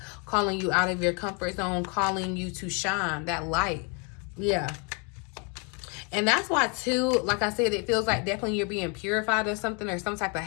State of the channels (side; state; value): right; quieter; 34.6 dB